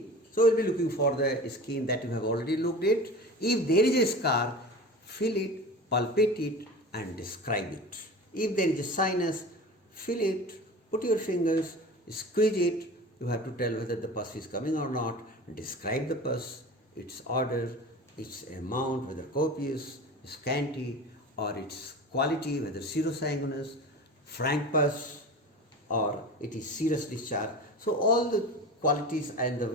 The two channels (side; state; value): both; normal; correlation 0.33